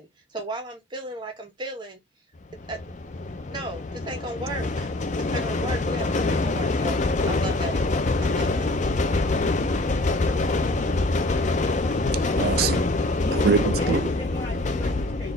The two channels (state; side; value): normal; both; correlation 0.49